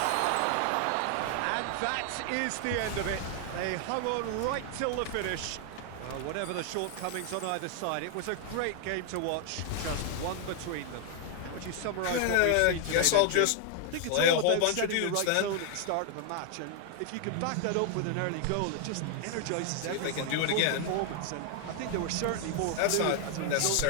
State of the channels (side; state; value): both; different; correlation 0.00